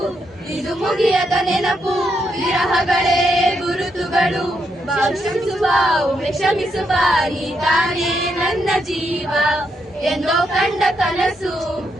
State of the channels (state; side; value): normal; both; correlation 0.79